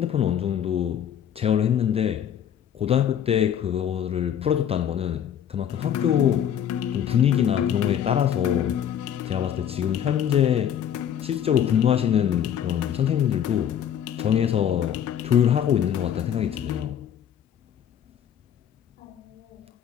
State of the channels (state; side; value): quieter; right; 9.4 dB